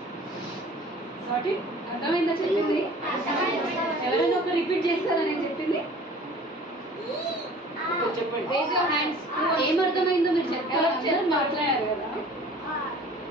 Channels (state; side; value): normal; both; correlation 0.47